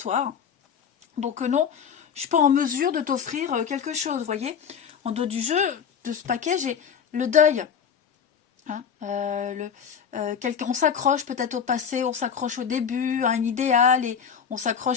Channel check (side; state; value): right; quieter; 7.2 dB